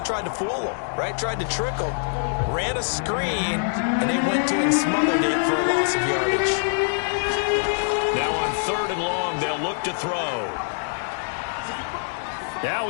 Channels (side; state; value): right; silent; digital silence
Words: tried to fool him, right? Tried to trick him. Ran a screen, and they went to and smothered it for a loss of yardage. Now on 3rd and long, they'll look to throw. Now